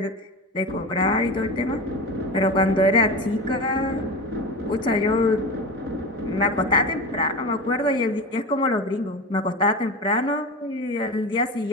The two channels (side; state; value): both; normal; correlation 0.27